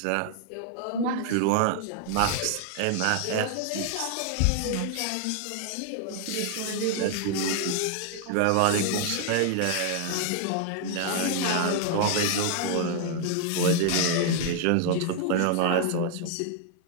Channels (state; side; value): different; both; correlation 0.00